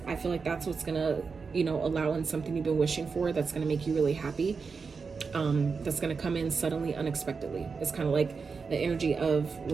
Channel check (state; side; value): quieter; left; 5.1 dB